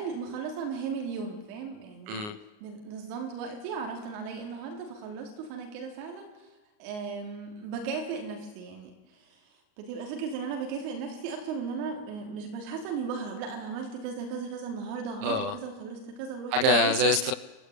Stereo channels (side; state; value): left; late; 38 ms